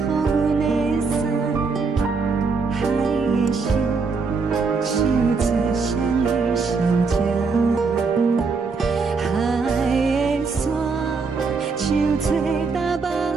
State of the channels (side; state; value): left; quieter; 4.6 dB